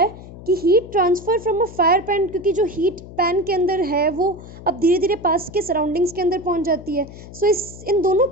है कि heat transfer from a fire pan, क्योंकि जो हीट पैन के अंदर है वो अब धीरे धीरे पास के सराउंडिंग्स के अंदर पहुंच जाती है। सो इन दोनों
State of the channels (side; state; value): left; noise; hum, 16 dB below the sound